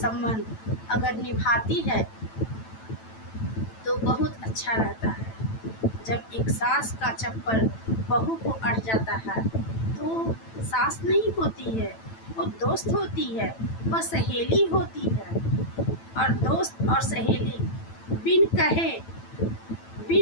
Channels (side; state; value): right; late; 9.0 ms